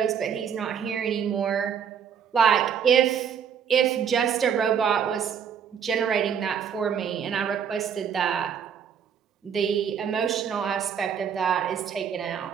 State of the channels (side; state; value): left; quieter; 7.8 dB